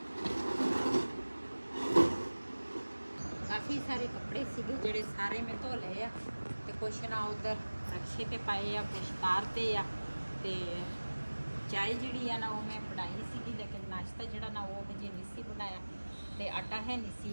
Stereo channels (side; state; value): both; inverted; correlation -1.00